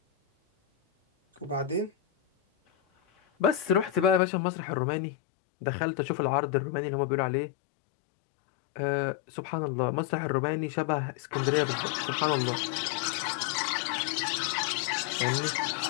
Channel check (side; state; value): right; drops out; at 4.2 s